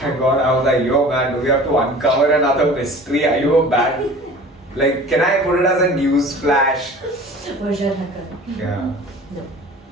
God, I was like, yo man, do we have to uncover another mystery? Are you a bad? Like, can I put it as a news flash? Version hacker. Yeah. No.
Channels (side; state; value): both; normal; correlation 0.43